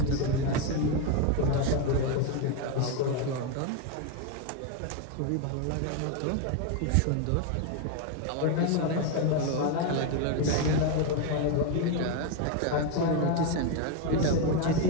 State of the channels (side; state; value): both; different; correlation 0.02